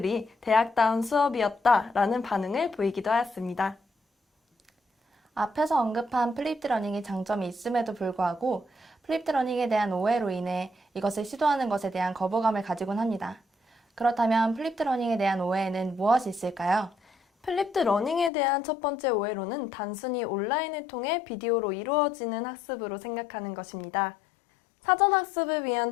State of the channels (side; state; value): right; drops out; at 18.3 s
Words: 대학다운 수업이었다 라는 반응을 보이기도 하였습니다. 앞에서 언급한 플립드 러닝의 장점이 있음에도 불구하고 플립드 러닝에 대한 오해로 인해 이것을 시도하는 것에 대한 거부감을 가지곤 합니다. 그렇다면 플립드 러닝에 대한 오해에는 무엇이 있을까요? 플립드 러닝에 대한 첫 번째 오해로는 단순히 온라인을 통해 비디오로 이루어지는 학습으로 생각하는 것입니다. 사전 학습을 위한